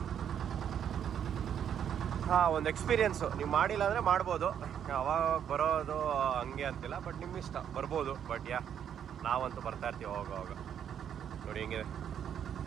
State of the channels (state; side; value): quieter; left; 8.9 dB